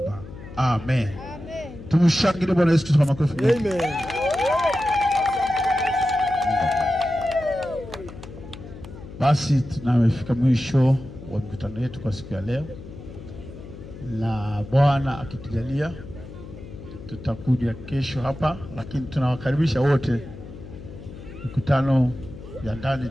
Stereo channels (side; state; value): left; noise; hum, 14 dB below the sound